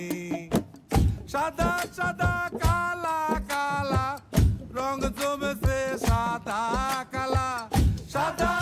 সাদা সাদা কালা কালা রং জমেছে সাদা কালা, সাদা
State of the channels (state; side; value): identical; both; correlation 1.00